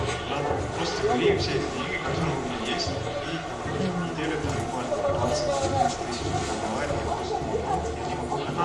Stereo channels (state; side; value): identical; both; correlation 1.00